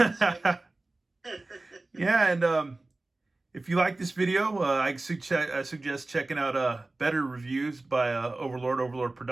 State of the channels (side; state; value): left; quieter; 3.0 dB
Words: you. Yeah, and if you like this video, I suggest checking out better reviews by Overlord